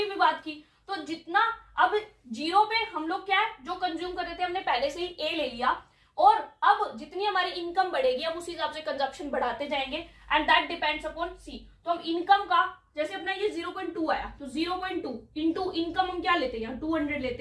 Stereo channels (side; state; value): both; identical; correlation 1.00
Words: भी बात की। तो जितना अब जीरो पे हम लोग क्या है जो कंज्यूम कर रहे थे हमने पहले से ही ए ले लिया, और अब जितनी हमारी इनकम बढ़ेगी हम उस हिसाब से कंजप्शन बढ़ाते जाएंगे, एंड दैट डिपेंड्स अपॉन सी। तो हम इनकम का जैसे अपना ये 0.2 आया तो 0.2 इंटू इनकम हम क्या लेते हैं, यहाँ 200